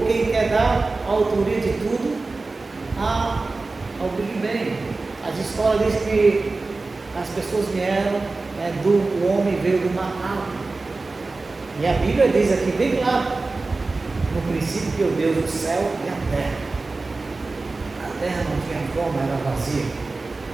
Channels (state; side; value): quieter; left; 3.6 dB